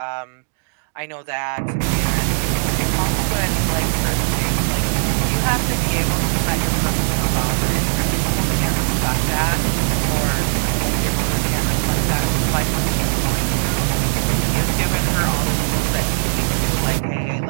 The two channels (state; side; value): silent; left; digital silence